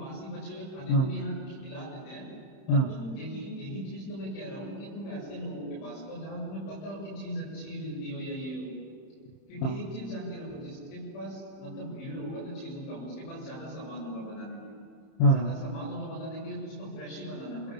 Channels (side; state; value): right; late; 31 ms